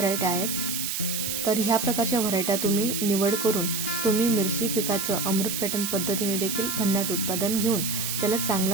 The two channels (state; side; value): noise; right; hiss, 2 dB below the sound